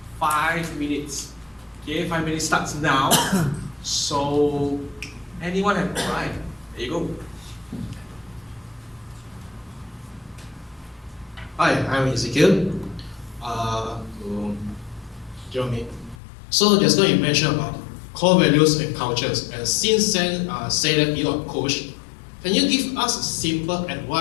5 minutes. Okay, 5 minutes starts now. So, anyone have? All right. There you go. Hi, I'm Ezekiel. To Jerome. So just now you mentioned about core values and cultures, and since then say that you are a coach, can you give us a simple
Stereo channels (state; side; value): drops out; right; at 16.2 s